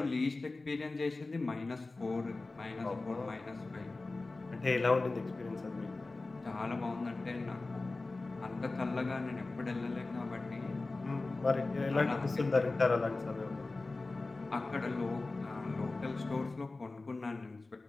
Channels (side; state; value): right; quieter; 3.4 dB